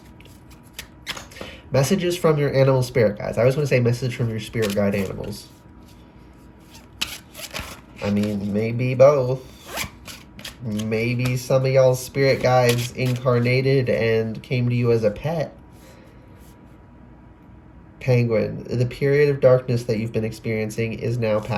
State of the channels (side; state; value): both; identical; correlation 1.00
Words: your animal spirit guides. I always want to say message from your spirit guide animals. I mean, maybe both. Maybe some of y'all's spirit guides incarnated and came to you as a pet. Penguin, the period of darkness that you've been experiencing is now